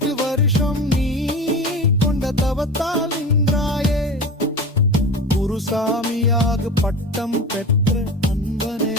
வருஷம் நீ கொண்ட தவத்தால் நின்றாயே குருசாமியாக பட்டம் பெற்ற அன்பனே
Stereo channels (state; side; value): normal; both; correlation 0.31